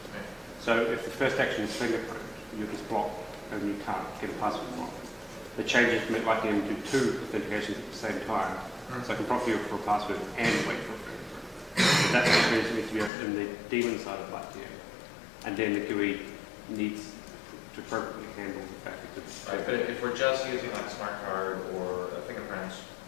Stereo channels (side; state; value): right; drops out; at 13.1 s